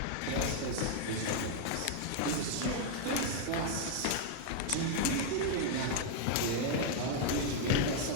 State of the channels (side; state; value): both; different; correlation 0.00